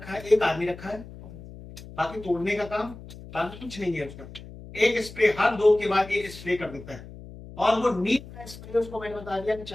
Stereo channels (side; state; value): left; noise; hum, 15 dB below the sound